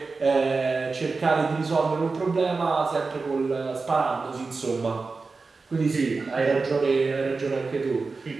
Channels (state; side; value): quieter; left; 4.1 dB